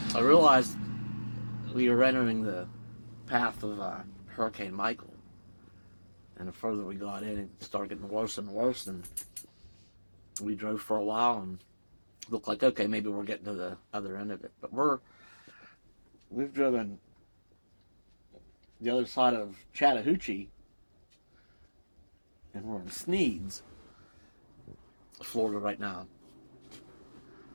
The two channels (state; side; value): inverted; both; correlation -1.00